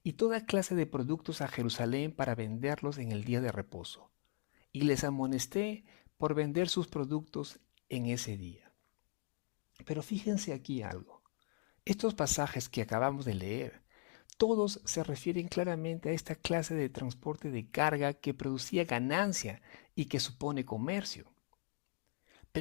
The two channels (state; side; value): quieter; right; 34.8 dB